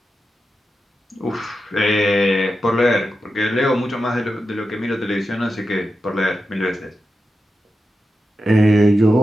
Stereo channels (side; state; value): both; normal; correlation 0.90